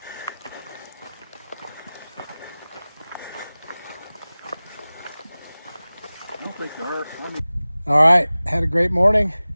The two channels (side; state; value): both; inverted; correlation -0.98